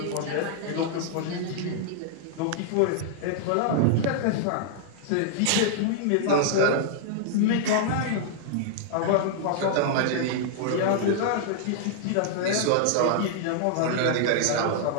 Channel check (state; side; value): different; both; correlation -0.01